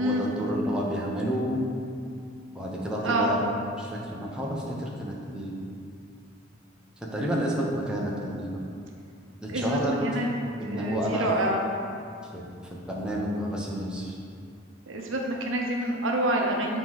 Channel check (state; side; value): normal; both; correlation 0.39